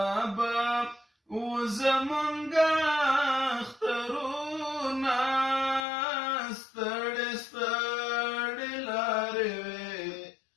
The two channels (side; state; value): right; drops out; at 5.8 s